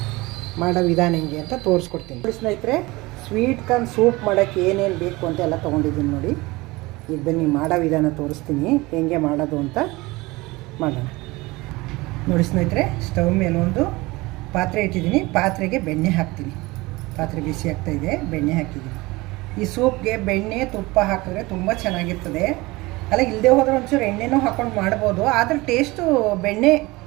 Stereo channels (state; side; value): quieter; left; 21.9 dB